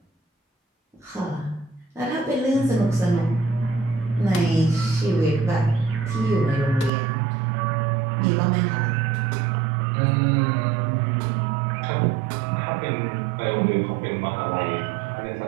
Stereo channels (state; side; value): drops out; left; at 6.9 s